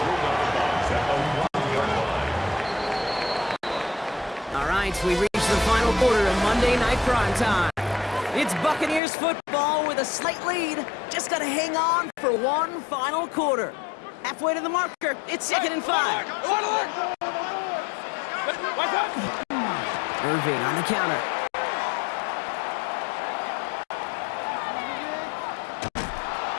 All right, we reach the final quarter of Monday Night Prime Time. It's Buccaneers football with a slight lead. Just got to hang on for one final quarter. Halfway to the marker, it's 2nd and 5. Irving on the counter.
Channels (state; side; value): drops out; right; at 9.0 s